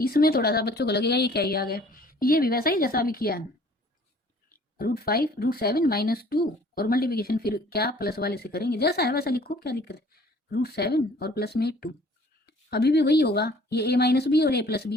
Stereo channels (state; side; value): normal; both; correlation 0.54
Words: थोड़ा सा बच्चों को लगेगा ये क्या ही आ गया, ये भी वैसा ही जैसा अभी किया है, √5 √7 माइनस 2 और मल्टीप्लिकेशन फिर क्या प्लस वाले से करेंगे, जैसा है वैसा लिखो, क्या दिक्कत है। √7 और प्लस में 2, अभी भी वही होगा, ये a माइनस बी और a प्लस